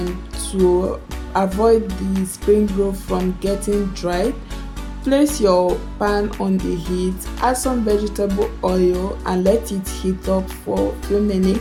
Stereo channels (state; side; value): identical; both; correlation 1.00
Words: to avoid the spring roll from getting dried. Place your pan on the heat, add some vegetable oil and let it heat up for a few